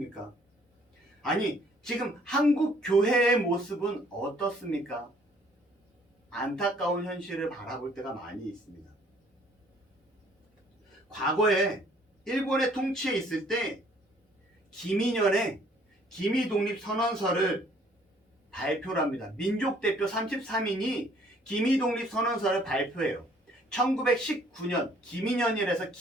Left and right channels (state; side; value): normal; both; correlation 0.60